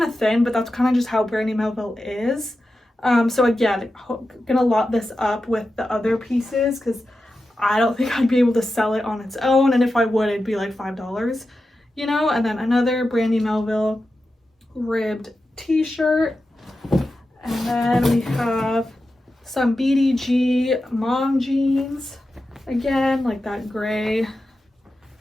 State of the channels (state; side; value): normal; both; correlation 0.91